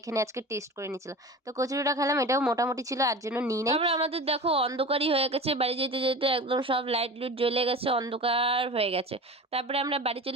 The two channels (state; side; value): normal; both; correlation 0.34